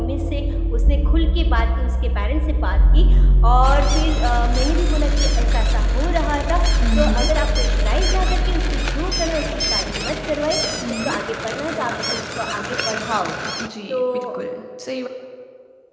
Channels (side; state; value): both; identical; correlation 1.00